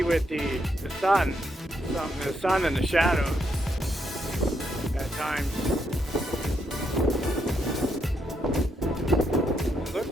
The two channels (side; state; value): both; normal; correlation 0.78